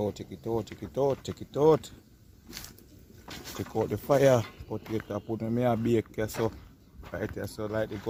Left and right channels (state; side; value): identical; both; correlation 1.00